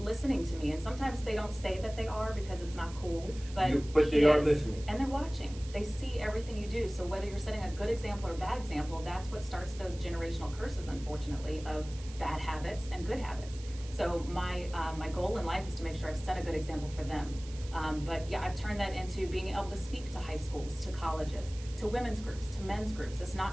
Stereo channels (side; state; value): right; noise; hiss, 18 dB below the sound